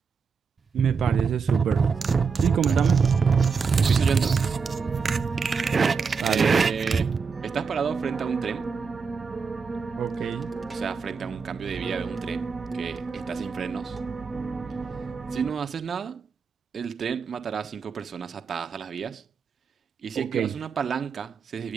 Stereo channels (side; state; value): left; quieter; 5.5 dB